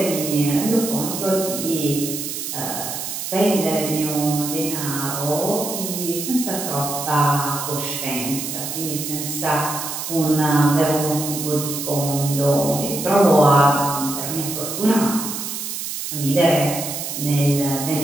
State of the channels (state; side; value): noise; right; hiss, 5 dB below the sound